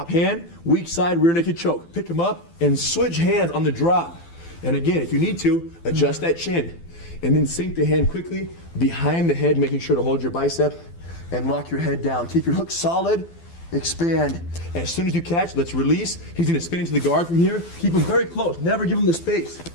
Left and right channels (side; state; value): right; late; 12 ms